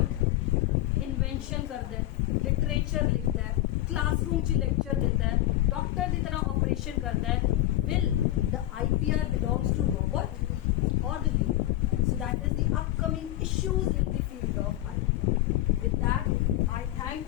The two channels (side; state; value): right; quieter; 14.9 dB